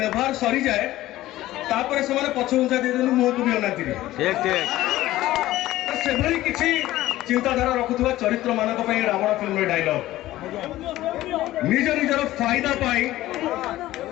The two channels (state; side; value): quieter; right; 15.7 dB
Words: सरी जाए तापर से पछ घुंचा दे मुह को भी अनाती से किसी चिंताधारा रखुवा चरित्र मान रावण फिल्म डायलॉग निज निजर फायदा पाई